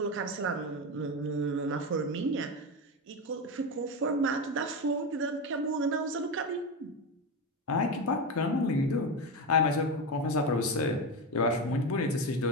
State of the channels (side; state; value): both; normal; correlation 0.17